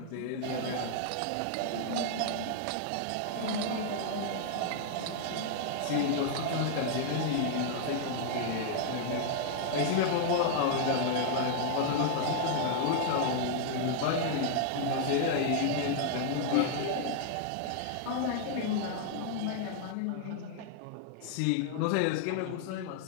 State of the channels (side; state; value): both; different; correlation -0.01